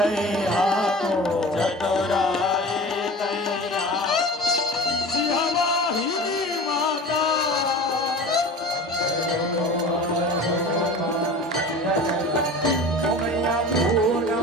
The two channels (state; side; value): normal; both; correlation 0.38